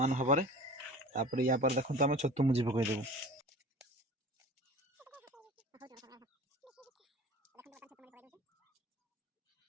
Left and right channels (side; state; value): both; normal; correlation 0.39